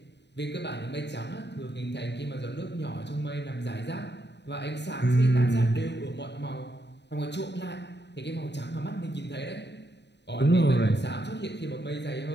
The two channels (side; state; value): right; late; 0.50 ms